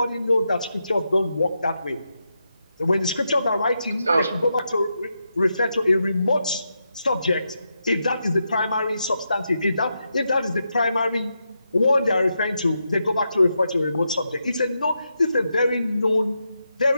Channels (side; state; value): both; inverted; correlation -0.85